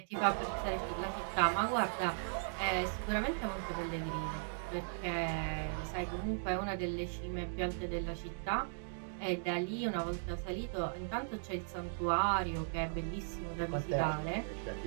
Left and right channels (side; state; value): left; silent; digital silence